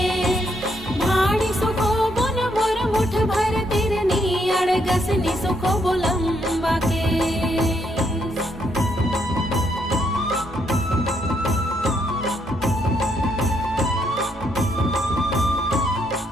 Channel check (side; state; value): both; normal; correlation 0.74